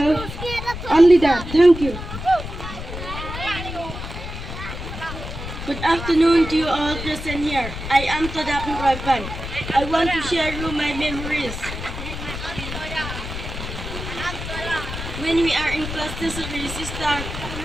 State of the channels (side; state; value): left; noise; rumble, 8 dB below the sound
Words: Only that. Thank you. Good afternoon to you all present here. I am Kitab. I want to share you my memories. When we are in class nursery,